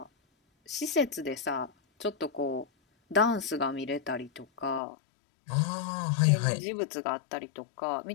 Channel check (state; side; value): drops out; right; at 4.8 s